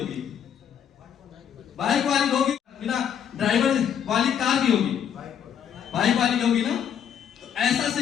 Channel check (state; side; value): quieter; right; 8.6 dB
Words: बाइक वाली होगी, बिना ड्राइवर वाली कार की होगी, बाइक वाली की होगी ना। तो ऐसा